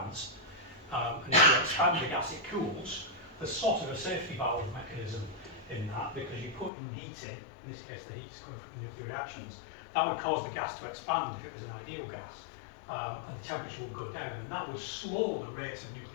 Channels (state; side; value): drops out; right; at 6.7 s